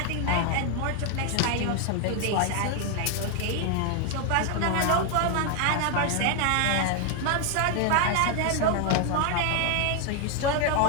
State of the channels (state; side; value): different; both; correlation 0.00